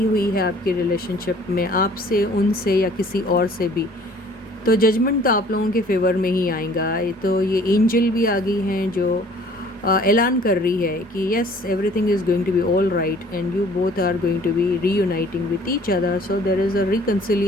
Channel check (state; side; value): normal; both; correlation 0.54